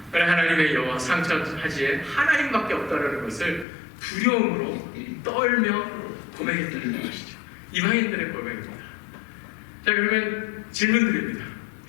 하나님의 여호와 상천하지에 하나님밖에 없다는 것을 두려움으로 떨며 고백했다는 것이죠. 이방인들의 고백입니다. 자, 그러면 질문 드립니다.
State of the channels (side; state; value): right; drops out; at 3.7 s